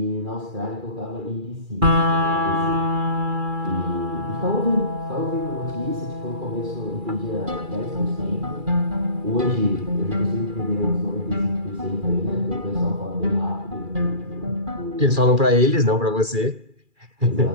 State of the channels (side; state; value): left; late; 2.4 ms